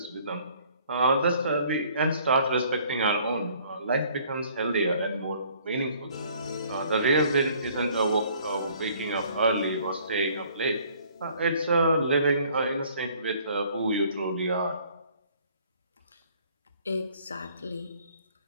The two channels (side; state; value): both; inverted; correlation -0.58